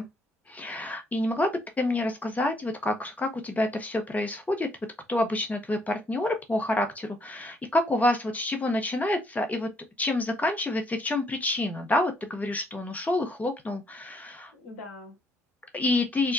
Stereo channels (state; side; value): normal; both; correlation 0.70